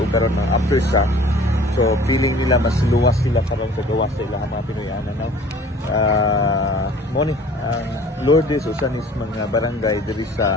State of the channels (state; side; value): normal; both; correlation 0.49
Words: karon ng aftershock. So feeling nila mas luwas sila karon sa gawas sa ilang mga Pinoyanan, no? Ang Lourdes usan is mga barangay diri